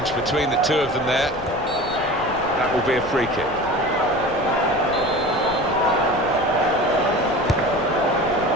between the two of them there. That will be a free kick.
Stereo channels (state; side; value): noise; left; rumble, 15 dB below the sound